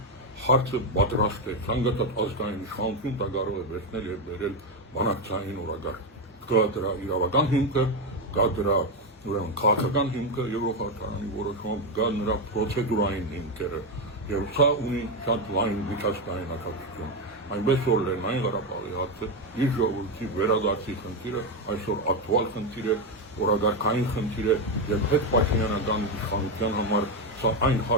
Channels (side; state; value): both; normal; correlation 0.09